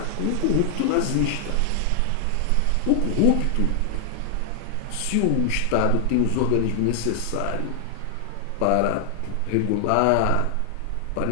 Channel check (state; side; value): different; both; correlation 0.00